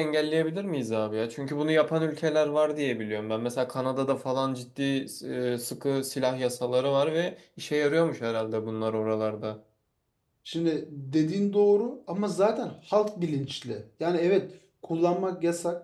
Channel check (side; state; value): both; identical; correlation 1.00